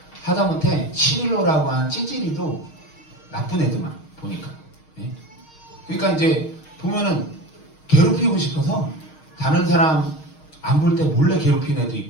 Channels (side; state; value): right; late; 6.4 ms